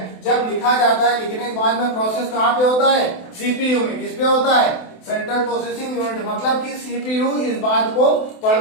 जब लिखा जाता है, लिखने के बाद में प्रोसेस कहाँ पे होता है, सीपीयू में। किस पे होता है, सेंट्रल प्रोसेसिंग यूनिट। मतलब कि सीपीयू इस बात को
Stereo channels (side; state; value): right; late; 28 ms